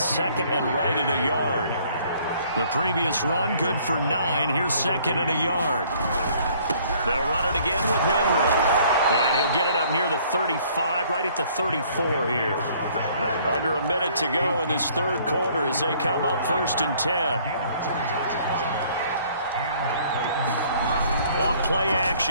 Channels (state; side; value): inverted; both; correlation -0.59